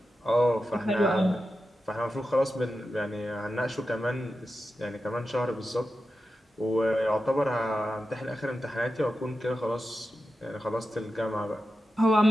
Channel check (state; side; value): normal; both; correlation 0.91